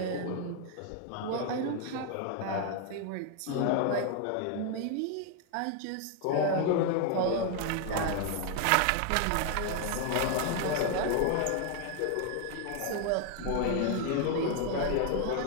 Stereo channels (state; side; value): different; both; correlation 0.00